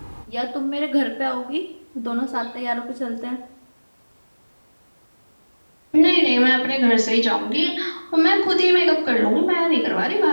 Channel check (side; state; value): both; inverted; correlation -1.00